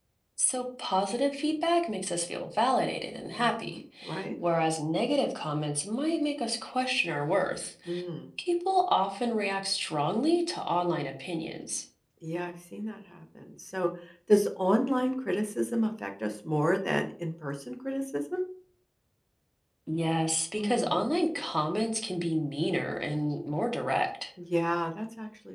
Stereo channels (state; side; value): identical; both; correlation 1.00